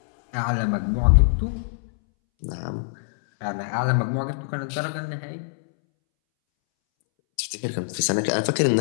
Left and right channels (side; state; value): right; silent; 63 dB below the other